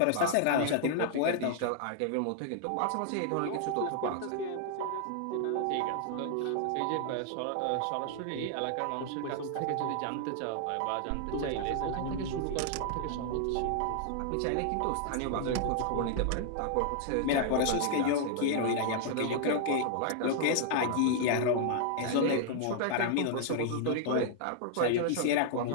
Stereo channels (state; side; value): different; both; correlation -0.01